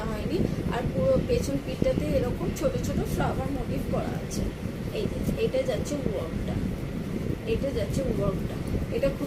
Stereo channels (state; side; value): identical; both; correlation 1.00